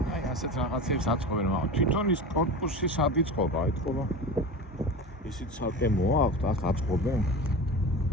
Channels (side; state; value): both; normal; correlation 0.30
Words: აი ასეთ რაღაცებს აწყობენ, მაგრამ თვითონ ის კორპუსი სად იწყობა, ეთქობა. ისიც ცალკე მოაქვთ, აქ აწყობენ.